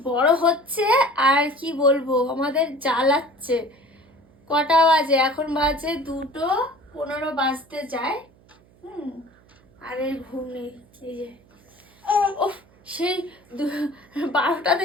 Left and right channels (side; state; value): right; noise; hum, 30 dB below the sound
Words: বড় হচ্ছে আর কি বলবো, আমাদের জ্বালাচ্ছে। কটা বাজে? এখন বাজে 2:15 বাজতে যায়। আর এই ঘুম নেই। এই যে ও সেই 12টা